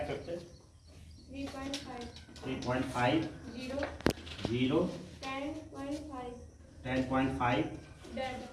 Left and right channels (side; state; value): both; identical; correlation 1.00